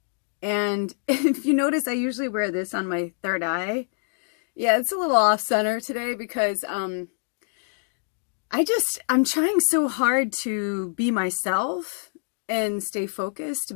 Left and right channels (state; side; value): silent; right; digital silence